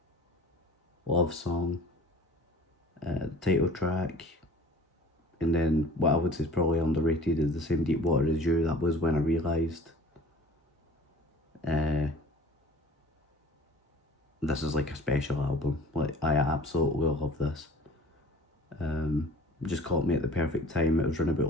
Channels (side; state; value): both; normal; correlation 0.46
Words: Love Song, title track, and then what I would say is probably underrated is The Same Deep Water As You. That was when I realised this is like a special album. Like, I absolutely love this. Just caught me at the perfect time. It was running